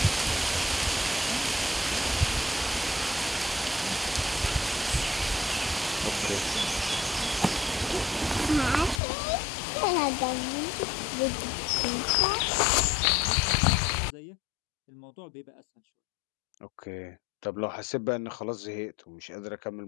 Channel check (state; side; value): drops out; right; at 9.0 s